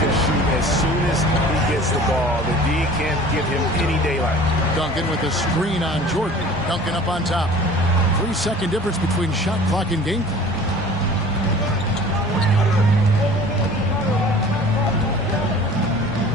to shoot as soon as he gets the ball. The D can't give him any daylight. Duncan with a screen on Jordan. Duncan up on top. 3-second difference between shot clock and game clock.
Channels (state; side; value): normal; both; correlation 0.45